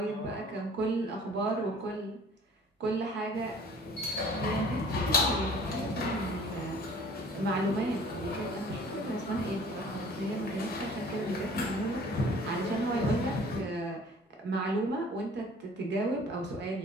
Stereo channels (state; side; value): normal; both; correlation 0.51